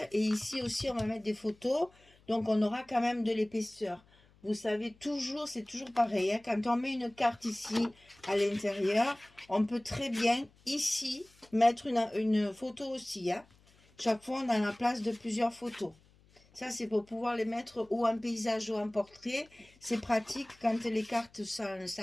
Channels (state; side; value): noise; left; hum, 30 dB below the sound